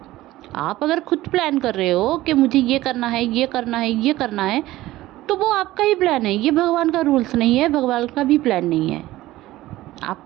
आप अगर खुद प्लान कर रहे हो कि मुझे ये करना है, ये करना है, ये करना है, तो वो आपका ही प्लान है। ये भगवान का रूल्स नहीं है, भगवान का भी प्लान नहीं है।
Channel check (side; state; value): left; quieter; 16.5 dB